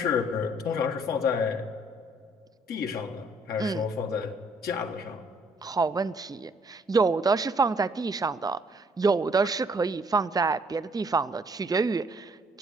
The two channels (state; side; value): normal; both; correlation 0.64